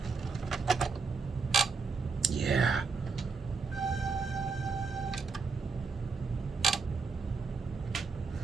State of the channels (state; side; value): quieter; left; 4.8 dB